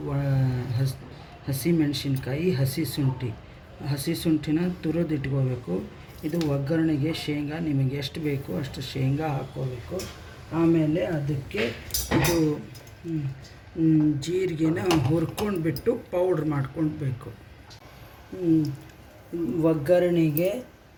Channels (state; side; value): identical; both; correlation 1.00